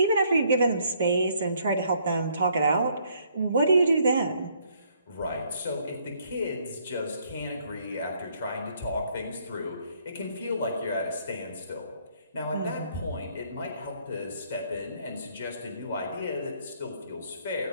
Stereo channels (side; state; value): both; inverted; correlation -0.67